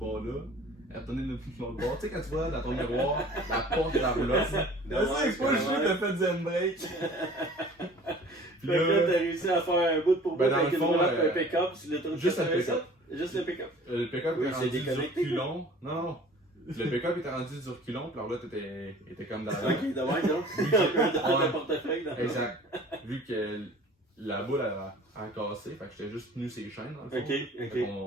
Elle a tourné l'autre bord. Tu sais, quand tu vois dans ton miroir la porte de la roulotte. C'est pas le jeu que t'as fait zen break. Puis Fait que là, t'as réussi à faire un bout pour bout Ben, dans avec le une fond, roulotte et un pick-up sur l'autoroute juste un 87. pick-up. Juste le pick-up. Le pick-up Oui, était c'est rendu du déconnecté. reculon. Non. Le pick-up était rendu du reculon, puis la roulotte était comme dans la. Ok, de même, donc. Dans le portefeuille. dans le- Exact. Vu que la boule a cassé, fait que j'étais juste tenu ses chaînes dans le fond. Ok, Fait ok.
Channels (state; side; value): normal; both; correlation 0.47